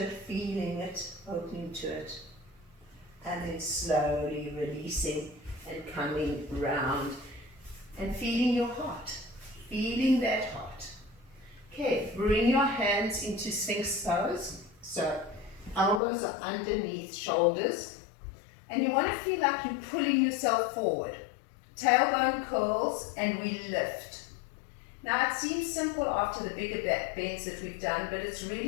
it, feeling it, opening to it. And then slowly releasing and coming round and feeling your heart, feeling that heart. Okay, bring your hands into Sphinx pose. So elbows are underneath shoulders. And you want to feel like you're pulling yourself forward. Tailbone curls and we lift. Now it seems simple after the bigger back bends that we've done, but it's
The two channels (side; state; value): right; drops out; at 16.0 s